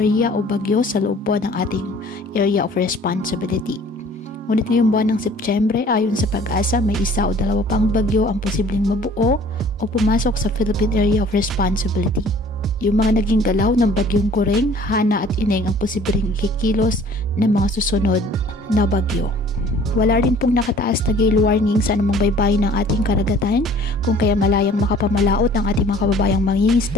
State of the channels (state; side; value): normal; both; correlation 0.52